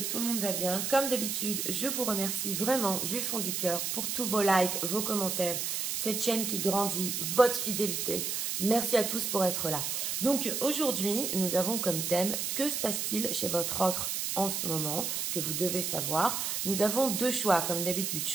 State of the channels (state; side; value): noise; right; hiss, 1 dB below the sound